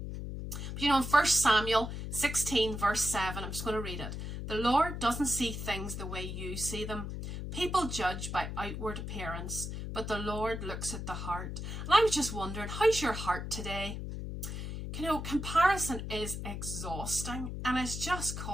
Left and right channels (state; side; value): noise; left; hum, 6 dB below the sound